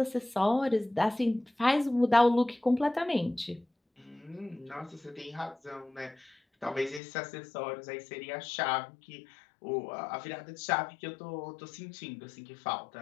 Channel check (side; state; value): right; drops out; at 7.0 s